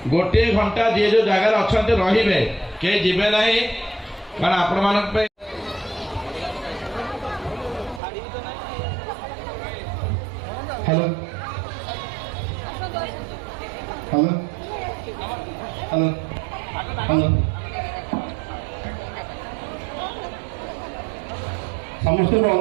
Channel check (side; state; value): left; drops out; at 8.0 s